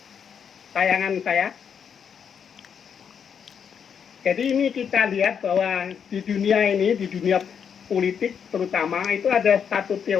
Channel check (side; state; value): right; quieter; 7.4 dB